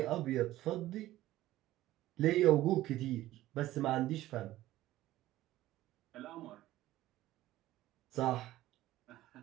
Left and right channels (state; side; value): quieter; left; 15.4 dB